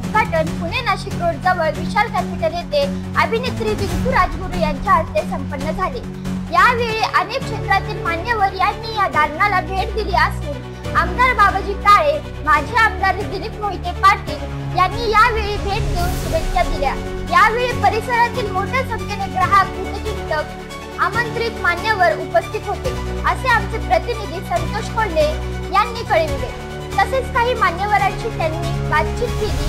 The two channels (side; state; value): both; identical; correlation 1.00